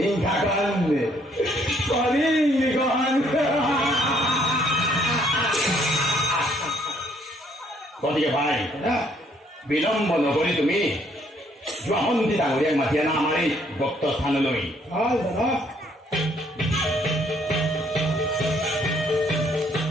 কৰিম গ্ৰহণ গতিকে ভাই বিলম্ব নকৰি তুমি যোৱা মন্ত্ৰী ডাঙৰীয়াক মাতি আনা আমাৰ এই ভক্ত স্থানলৈ। ভাল দাদা।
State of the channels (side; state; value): both; normal; correlation 0.66